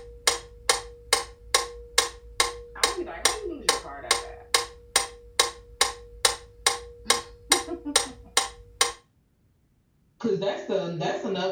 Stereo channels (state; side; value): identical; both; correlation 1.00